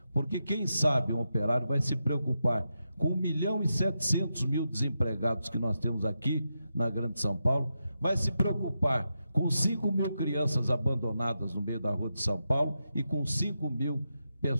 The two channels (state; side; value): inverted; both; correlation -0.87